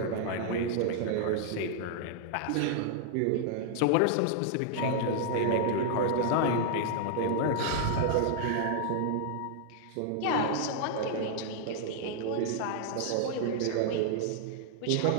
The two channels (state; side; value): different; both; correlation -0.01